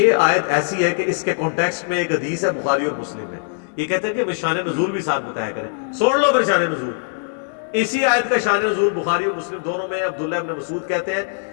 آیت ایسی ہے کہ اس کے کانٹیکسٹ میں ایک حدیث ہے بخاری اور مسلم میں، یہ کہتے ہیں کہ شان نزول بھی ساتھ بتایا کریں، سوڑ لو پھر شان نزول۔ اسی آیت کا شان نزول بخاری اور مسلم دونوں میں عبداللہ ابن مسعود کہتے ہیں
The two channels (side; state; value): right; silent; digital silence